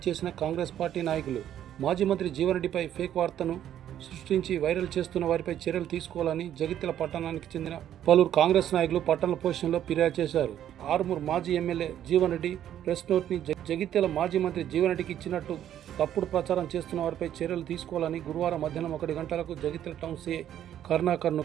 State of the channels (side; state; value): left; quieter; 10.9 dB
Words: చేసిన కాంగ్రెస్ పార్టీ నాయకులు మాజీ మంత్రి జీవన్ రెడ్డిపై ఫేక్ వార్తను సృష్టించి వైరల్ చేస్తున్న వారిపై చర్యలు తీసుకోవాలని జగిత్యాల పట్టణానికి చెందిన పలువురు కాంగ్రెస్ నాయకులు పట్టణ పోలీస్ స్టేషన్లో ఫిర్యాదు చేశారు. ఆర్మూర్ మాజీ ఎమ్మెల్యే జీవన్ రెడ్డి ప్రెస్ నోట్ని జగిత్యాల మాజీ మంత్రి జీవన్ రెడ్డికి ఇచ్చినట్టు తప్పుడు ప్రచారం చేస్తున్న వారిపై చర్యలు తీసుకోవాలని గురువారం మధ్యాహ్నం 1 గంటలకు జగిత్యాల టౌన్ సీఐ కరుణాకర్ను